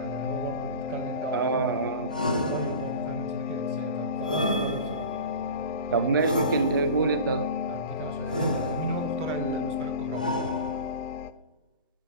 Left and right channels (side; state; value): both; inverted; correlation -0.35